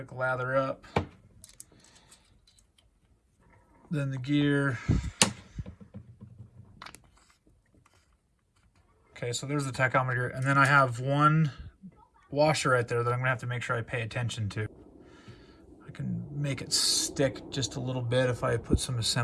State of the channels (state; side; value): identical; both; correlation 1.00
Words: lather up, then the gear. Okay, so there's the tachometer, and then I have one washer right there that I'm gonna have to make sure I pay attention to. I can make it stick just a little bit if I put some